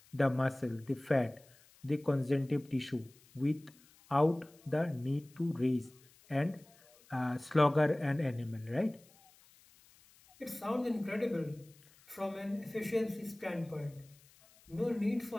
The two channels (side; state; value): left; noise; hiss, 28 dB below the sound